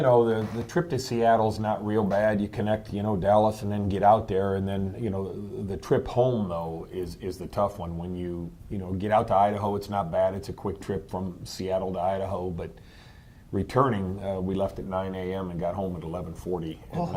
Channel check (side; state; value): both; identical; correlation 1.00